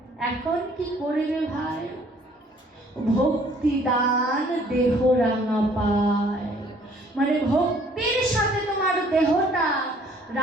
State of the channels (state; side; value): normal; both; correlation 0.59